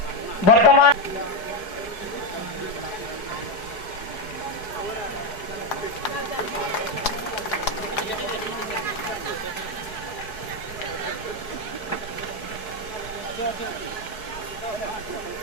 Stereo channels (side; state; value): right; late; 4.7 ms